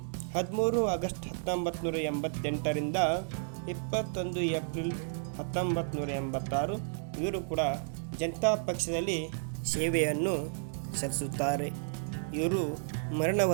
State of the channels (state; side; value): silent; left; digital silence